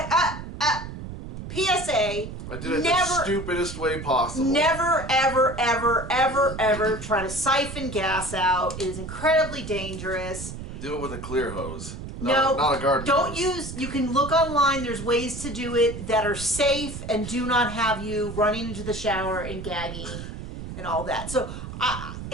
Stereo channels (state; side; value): noise; right; rumble, 9 dB below the sound